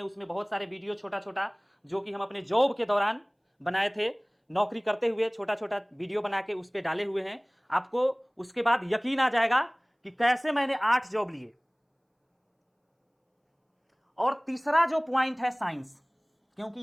उसमें बहुत सारे वीडियो छोटा छोटा जो कि हम अपने जॉब के दौरान बनाए थे, नौकरी करते हुए छोटा छोटा वीडियो बना के उस पर डाले हुए हैं। आपको उसके बाद यकीन आ जाएगा कि कैसे मैंने 8 जॉब लिए। और तीसरा जो पॉइंट है साइंस, क्योंकि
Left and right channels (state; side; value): identical; both; correlation 1.00